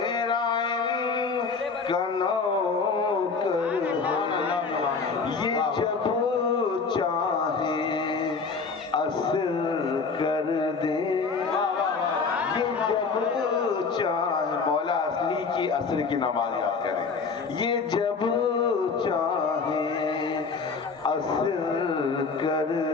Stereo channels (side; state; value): right; quieter; 4.8 dB